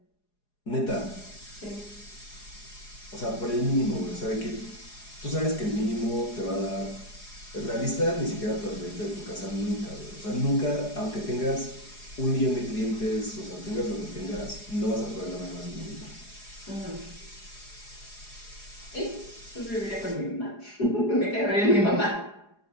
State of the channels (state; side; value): late; right; 4.8 ms